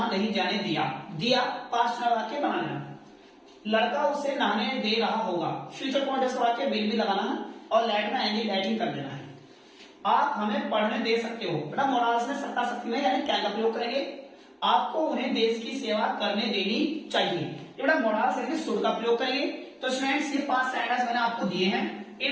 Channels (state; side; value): identical; both; correlation 1.00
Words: नहीं जाने दिया पास्ट का वाक्य बनाना। लड़का उसे नहाने दे रहा होगा, फ्यूचर कॉन्टिन्यूअस का वाक्य विल भी लगाना है, और लेट में एंडी लेटिंग कर देना है। आप हमें पढ़ने दे सकते हो बेटा, मोराल्स में सत्ता शक्ति में यानी क्या का प्रयोग करेंगे? आपको उन्हें देश की सेवा करने देनी चाहिए, ये बेटा मोराल्स यानी शुड का प्रयोग करेंगे। तो स्टूडेंट्स, ये 5 सेंटेंस मैंने आपको दिए हैं,